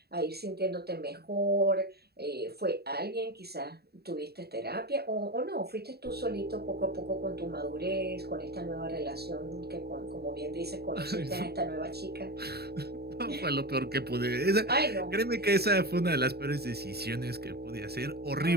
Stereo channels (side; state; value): left; late; 0.47 ms